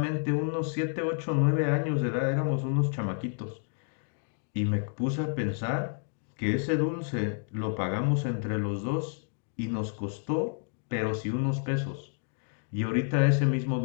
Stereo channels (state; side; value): silent; right; 58 dB below the other